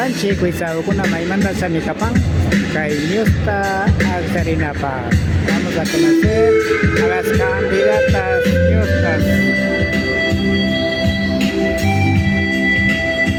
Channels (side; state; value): both; identical; correlation 1.00